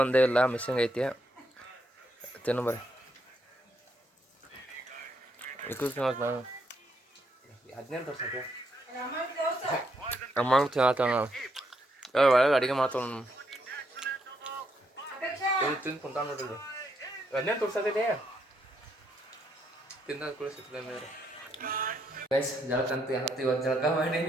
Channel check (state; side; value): normal; both; correlation 0.76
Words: ಒಂದೇ ಇಲ್ಲ, ಮಿಸ್ಸಿಂಗ್ ಐತಿ. ತಿನ್ನು ಬರ್ರಿ. ನಾನು 15 ವರ್ಷಕ್ಕೆ ಅಮ್ಮಂಗೆ ತಿನ್ನತ್ತ ಒಳಗೆ ಅಡುಗೆ ಮಾಡ್ತಾವ. ತಿಂದು ಕುಂತ ನೋಡಿದ್ರು 15 ತೋರ್ಸತ್ತಿದೆ. ತಿಂದ ಕೂಡ ಸಿಗ್ತದೆ ಮೇಲೆ ಗೈಸ್. ಜಳಕಂತ ಏನತ್ತು ಇವತ್ತು ಜಳಕ ಮಾಡೀನಿ.